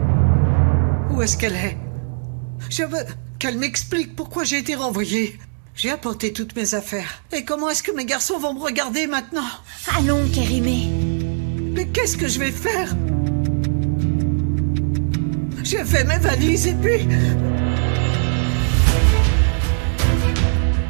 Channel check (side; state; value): left; silent; digital silence